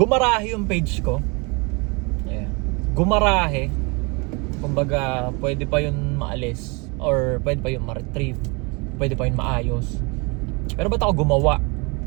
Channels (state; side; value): quieter; left; 29.7 dB